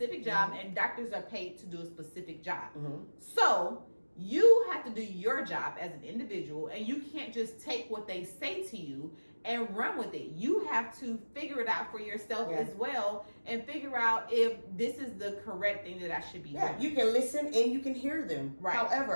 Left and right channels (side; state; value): both; inverted; correlation -1.00